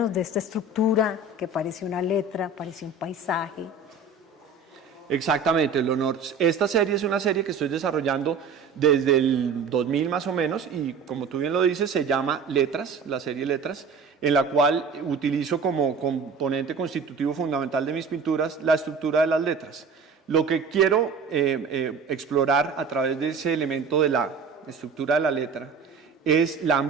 de esta estructura que parece una letra, parece un paisaje. Exactamente, Leonor. Esta serie es una serie que estoy desarrollando desde el 2000 más o menos, y como tú bien lo dices, se llama Letras, la serie Letras, en la cual utilizo como componente constitutivo fundamental de mis pinturas la estructura de las letras. Lo que quiero explorar a través de ese elemento de la estructura de la letra es la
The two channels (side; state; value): left; quieter; 4.7 dB